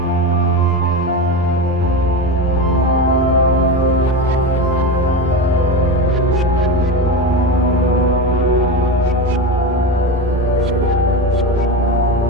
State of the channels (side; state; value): both; normal; correlation 0.20